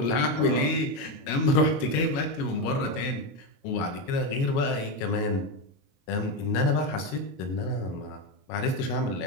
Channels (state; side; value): late; right; 22 ms